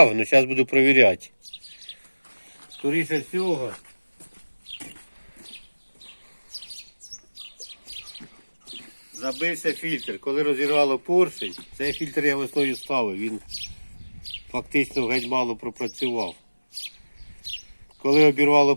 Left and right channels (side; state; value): both; inverted; correlation -1.00